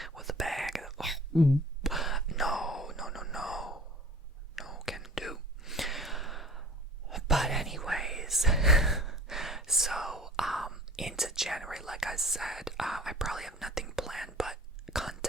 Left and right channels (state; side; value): normal; both; correlation 0.44